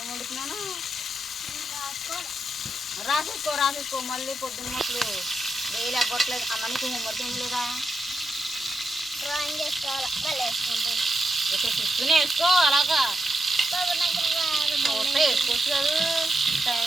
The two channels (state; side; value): normal; both; correlation 0.85